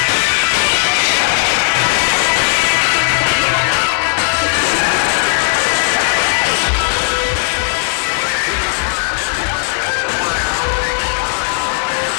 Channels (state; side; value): silent; right; 66 dB below the other